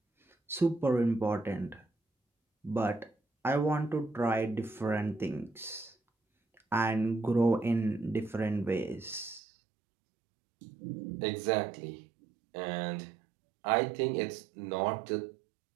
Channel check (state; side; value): drops out; left; at 9.4 s